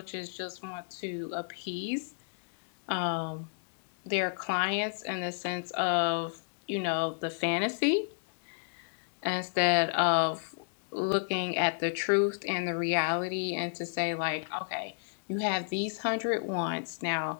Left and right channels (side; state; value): right; silent; digital silence